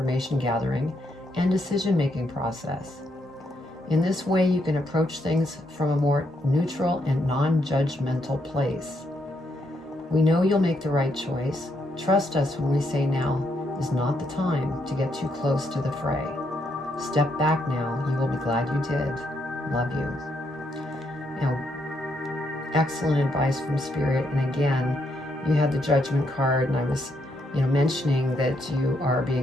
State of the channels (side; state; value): both; normal; correlation 0.77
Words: gathering and decision-making process. In this way, you can approach things from a more neutral and non-judgmental place. We know you'll make the right choice. Trust us when we say now is not the time to get too close to the fray. Step back now. You will be glad you did. Love you. Now, excellent advice from Spirit. And again, you had the Judgment card, and I was, mentioning that you are